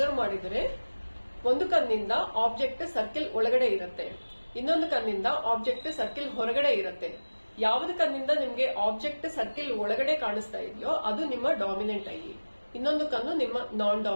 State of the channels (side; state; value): both; inverted; correlation -1.00